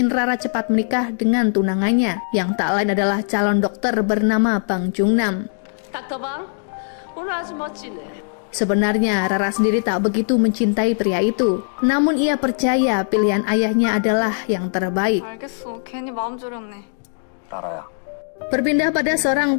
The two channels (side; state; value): right; silent; digital silence